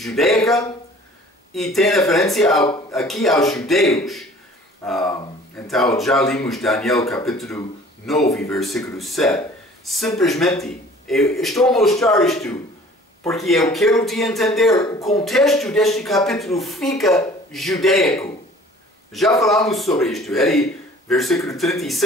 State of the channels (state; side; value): normal; both; correlation 0.49